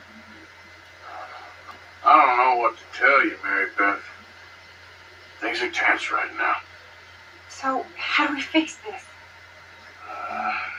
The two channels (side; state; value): both; identical; correlation 1.00